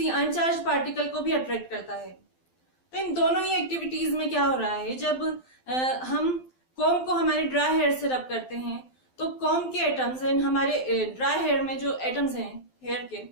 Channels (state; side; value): late; right; 12 ms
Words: अनचार्ज पार्टिकल को भी अट्रैक्ट करता है। तो इन दोनों ही एक्टिविटीज में क्या हो रहा है, जब हम कॉम्ब को हमारे ड्राई हेयर से रब करते हैं तो कॉम्ब के एटम्स एंड हमारे ड्राई हेयर में जो एटम्स हैं हेयर के,